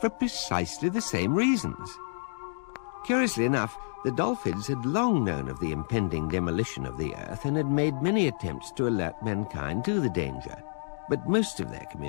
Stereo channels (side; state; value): right; silent; digital silence